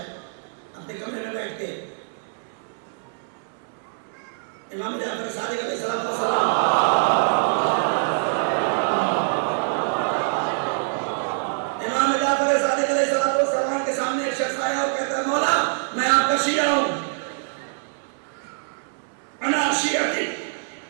اپنے کمرے میں بیٹھ کے. امام جعفر صادق علیہ السلام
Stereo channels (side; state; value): left; silent; 62 dB below the other